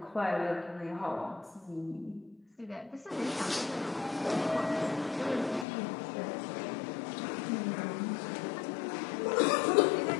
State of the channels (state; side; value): drops out; right; at 5.7 s